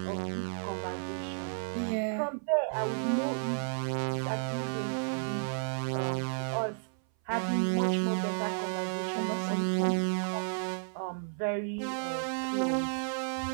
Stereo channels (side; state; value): left; silent; 56 dB below the other